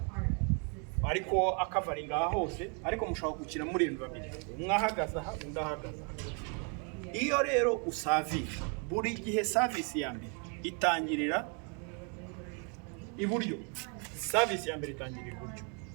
ariko akavaringa aha hose, ariko mushobora gukina muri babiri, umwe ahagaze aha undi ahagaze aha. Iyo rero usavinga, buri gihe service ya mbere itangirira iburyo. Service ya mbere itangirira iburyo.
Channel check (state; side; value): quieter; left; 37.2 dB